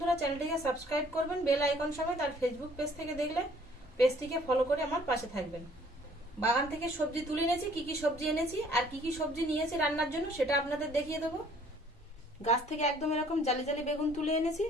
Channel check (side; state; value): both; normal; correlation 0.58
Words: চ্যানেলটিকে সাবস্ক্রাইব করবেন বেল আইকন সমেত, আর ফেসবুক পেজ থেকে দেখলে পেজটিকে ফলো করে আমার পাশে থাকবেন। বাগান থেকে সবজি তুলে এনেছি, কি কি সবজি এনেছি আর কি কি সবজি নিয়েছি রান্নার জন্য সেটা আপনাদের দেখিয়ে দেবো। গাছ থেকে একদম এরকম জালি জালি বেগুন তুলে এনেছি,